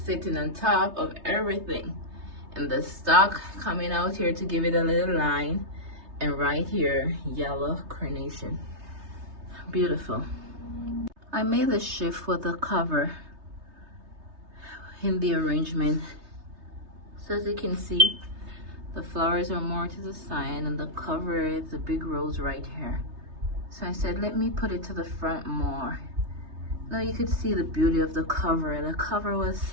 sitting on top of everything, and the stock coming out here to give it a little line, and right here yellow carnation. Beautiful. I made a shift with the cover in the arrangement, so as you can see the flowers are more to the side and the cover is a big rose right here. So I said, let me put it to the front more. Now you could see the beauty of the cover. The cover was,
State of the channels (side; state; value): left; late; 3.3 ms